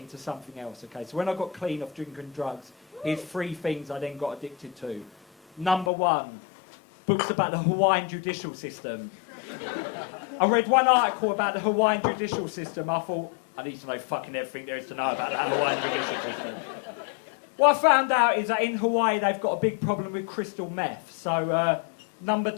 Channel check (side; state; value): right; drops out; at 5.9 s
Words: something else. Okay. So when I got clean off drink and drugs, here's 3 things I then got addicted to. Number 1, books about the Hawaiian judicial system. I read one article about the Hawaiian judicial system. I thought, I need to know fucking everything there is to know about that Hawaiian judicial system. What I found out is that in Hawaii they've got a big problem with crystal meth. So number